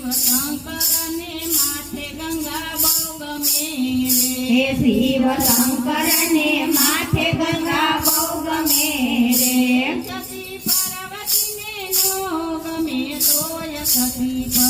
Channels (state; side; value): identical; both; correlation 1.00